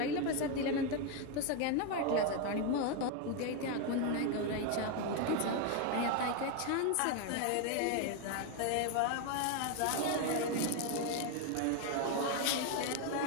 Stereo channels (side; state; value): both; different; correlation 0.01